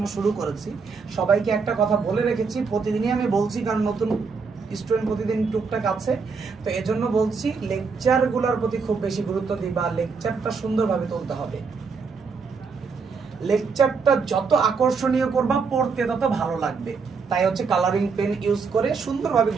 শুরু করেছি। সবাইকে একটা কথা বলে রেখেছি, প্রতিদিনই আমি বলছি, কারণ নতুন স্টুডেন্ট প্রতিদিন টুকটাক আছে, তো এজন্য বলছি লেকচারগুলোর প্রতি খুব বেশি গুরুত্ব দিবা। লেকচারটা সুন্দরভাবে তুলতে হবে। লেকচারটা যত আকর্ষণীয় করবা পড়তে তত ভালো লাগবে। তাই হচ্ছে কালারিং পেন ইউজ করে সুন্দরভাবে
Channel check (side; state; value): left; quieter; 5.1 dB